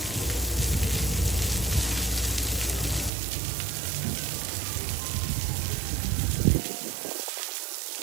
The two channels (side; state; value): left; drops out; at 3.1 s